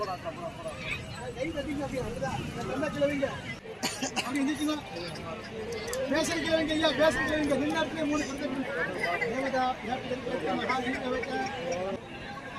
கை தட்டிங்க அப்படியே கிழவிங்க அப்படி எந்திரிச்சுங்க பேசுற கிழவிங்க ஐயா பேசுற கிழவிங்க நின்னாட்டிலே 3 கொடுத்து தேவதா மகாதீப வைக்க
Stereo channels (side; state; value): both; identical; correlation 1.00